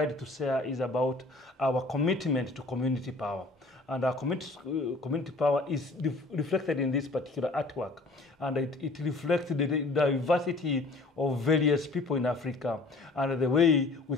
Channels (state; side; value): quieter; right; 3.2 dB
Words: to share is about our commitment to community power. And our community power is reflected in this particular artwork. And it reflects the diversity of various people in Africa and the way we